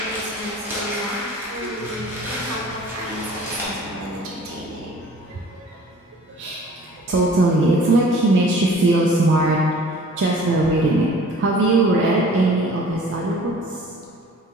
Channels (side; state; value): both; normal; correlation 0.49